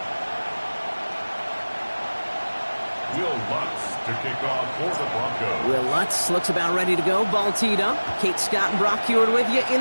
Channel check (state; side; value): inverted; both; correlation -1.00